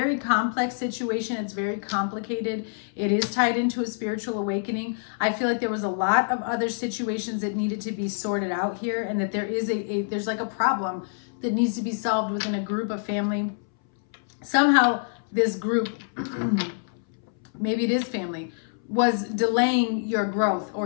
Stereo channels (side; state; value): right; silent; 61 dB below the other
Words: complex situation. It's very complicated. It is tied into a spiritual awakening. I feel like there was a lot of other situations that needed to be sorted out here, and that there is there's like a problem that needs to be solved within a group, of family. Somehow this group, maybe it is family, was delaying your growth